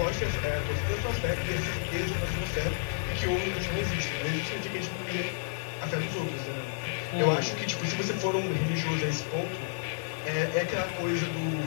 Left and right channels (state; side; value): silent; right; digital silence